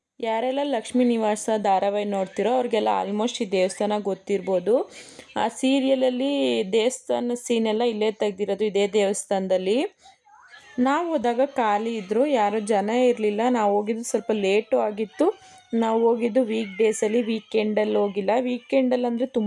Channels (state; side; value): identical; both; correlation 1.00